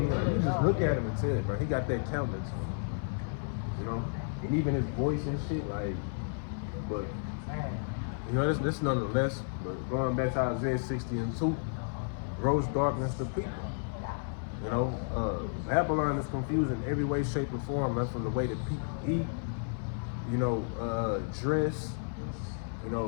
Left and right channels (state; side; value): silent; right; 55 dB below the other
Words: just look at him and tell it, bro. He got that countenance, you know, and even his voice and shit, like, but. You know, this nonetheless, but going back to Isaiah 60:2, gross darkness to people. You know, Babylon is confused in every way, shape, or form, man, from the way that people eat, you know, dress, you